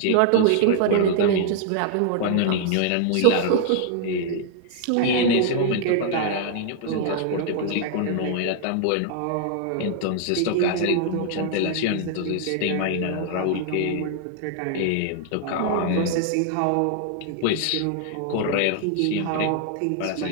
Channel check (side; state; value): both; different; correlation 0.00